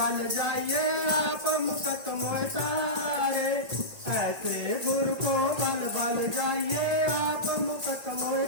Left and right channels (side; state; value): left; late; 1.8 ms